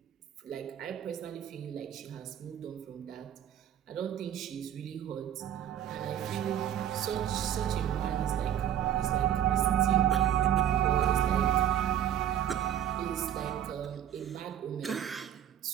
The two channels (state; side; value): quieter; left; 10.5 dB